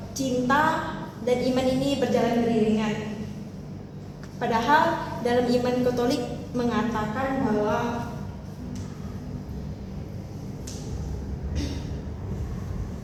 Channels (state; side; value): identical; both; correlation 1.00